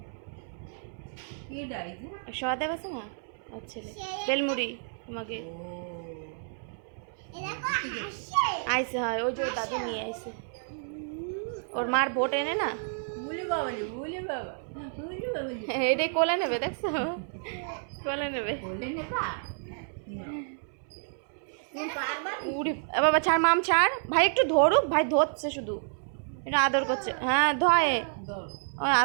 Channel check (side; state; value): left; silent; 58 dB below the other